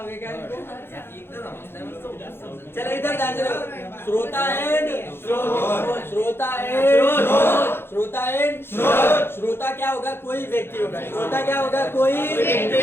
क्या इनको? चलो इधर ध्यान से देखो। श्रोता एंड श्रोता क्या होगा? कोई व्यक्ति होगा। श्रोता क्या होगा? कोई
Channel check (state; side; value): late; right; 0.11 ms